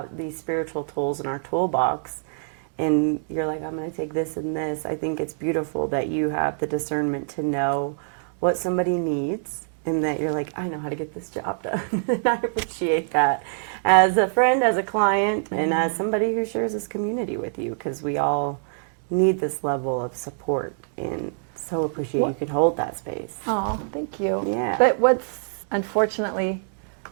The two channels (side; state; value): left; silent; digital silence